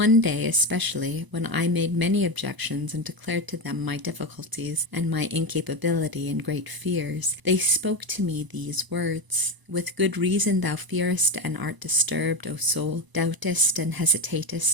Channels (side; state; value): left; late; 1.0 ms